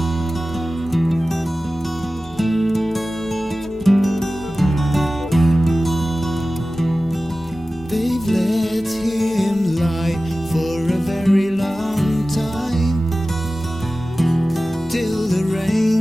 They've let him lie for a very long time, till the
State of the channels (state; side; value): normal; both; correlation 0.96